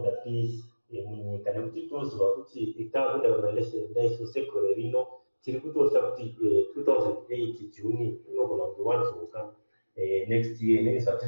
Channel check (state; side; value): inverted; both; correlation -1.00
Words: peace munyika, nekuti toziva kuti takuita organization daiso sekore rino tiri kutosa kuti 2008 June inogona kuti wanzoka next year